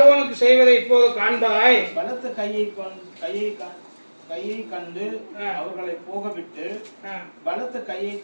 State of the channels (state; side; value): inverted; both; correlation -1.00